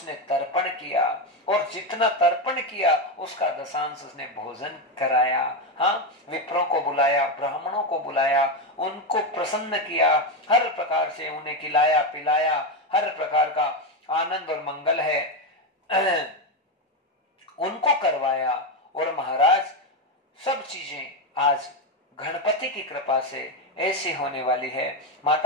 तर्पण किया, और जितना तर्पण किया उसका दशांश उसने भोजन कराया। हाँ, विप्रों को बुलाया, ब्राह्मणों को बुलाया, उनको प्रसन्न किया, हर प्रकार से उन्हें खिलाया पिलाया, हर प्रकार का आनंद और मंगल है उनको करवाया। और महाराज सब चीजें आज गणपति की कृपा से ऐसी होने वाली है।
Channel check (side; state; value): both; normal; correlation 0.10